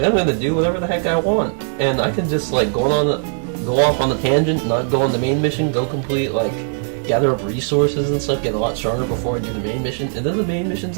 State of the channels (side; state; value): left; silent; 64 dB below the other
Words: I'm gonna do whatever the heck I want, and I can just like go off on the tangent, not go on the main mission, go complete like gather up resources and stuff, get a lot stronger before I do the main mission, and then the main mission's